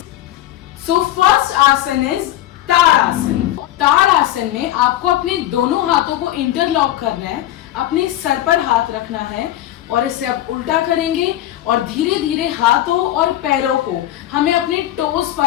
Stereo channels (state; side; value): quieter; right; 13.8 dB